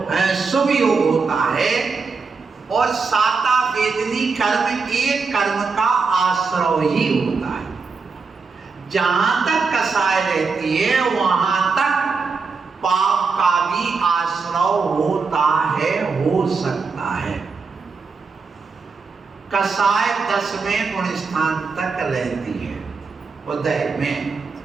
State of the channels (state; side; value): quieter; left; 4.7 dB